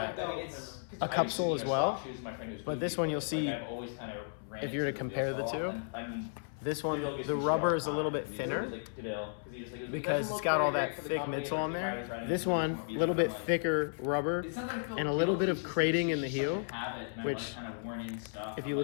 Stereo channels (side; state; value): right; silent; 55 dB below the other